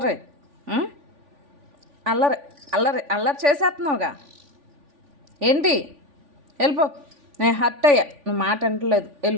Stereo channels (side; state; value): left; late; 3.5 ms